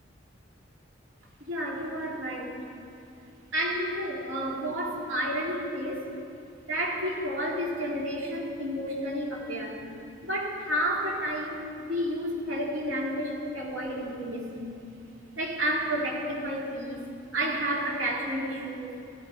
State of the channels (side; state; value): both; normal; correlation 0.21